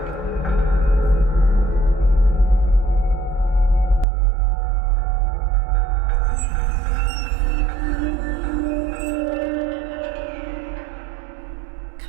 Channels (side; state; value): left; drops out; at 4.0 s